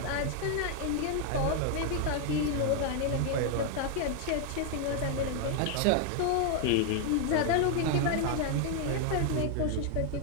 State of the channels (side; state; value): both; different; correlation 0.00